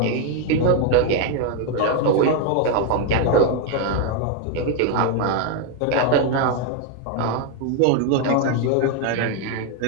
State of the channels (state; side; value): different; both; correlation 0.01